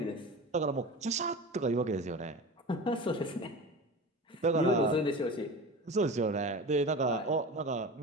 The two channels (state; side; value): normal; both; correlation 0.32